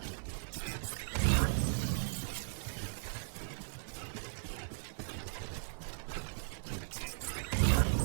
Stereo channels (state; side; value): silent; left; 53 dB below the other